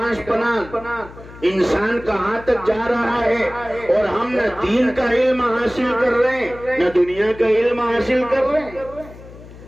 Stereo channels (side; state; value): left; noise; hum, 18 dB below the sound